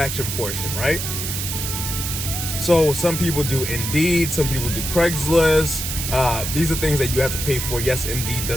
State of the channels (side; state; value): right; noise; hiss, 4 dB below the sound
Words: portion, right? So some people do Indeed, some people do Craigslist. These are things that you have to pay for. Yes, Indeed